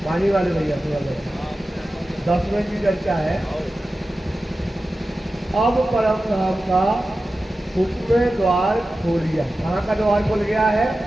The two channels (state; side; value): normal; both; correlation 0.94